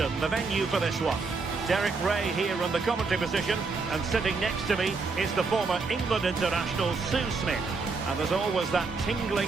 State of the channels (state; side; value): quieter; left; 4.3 dB